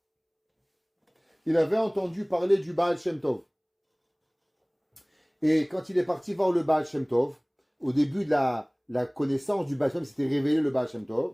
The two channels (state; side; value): identical; both; correlation 1.00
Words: Il avait entendu parler du Baal Shem Tov. Et quand il est parti voir le Baal Shem Tov, au début de la connaissance du Baal Shem Tov, s'était révélé le Baal Shem